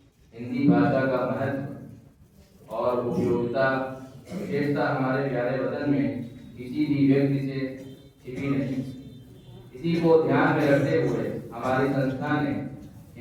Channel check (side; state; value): both; identical; correlation 1.00